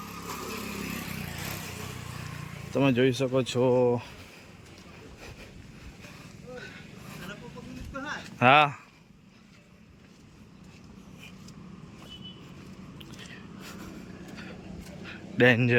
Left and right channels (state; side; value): identical; both; correlation 1.00